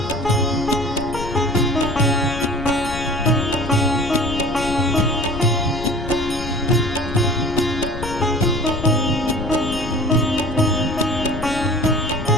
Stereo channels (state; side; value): noise; left; rumble, 8 dB below the sound